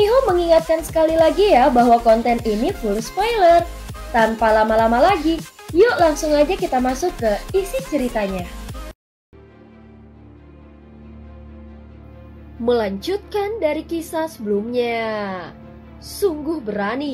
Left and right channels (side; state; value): both; identical; correlation 1.00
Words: mengingatkan sekali lagi ya bahwa konten ini full spoiler. Tanpa lama-lama lagi, yuk langsung aja kita masuk ke isi ceritanya. Melanjutkan dari kisah sebelumnya. Sungguh